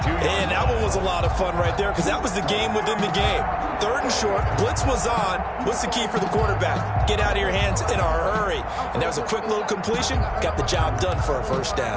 And that one was a lot of fun right there because that was the game within the game. 3rd and short, blitz was on. What's the key for the quarterback? Get out of your hands in a hurry. And that was a quick little completion. Got the job done for a first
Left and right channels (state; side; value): identical; both; correlation 1.00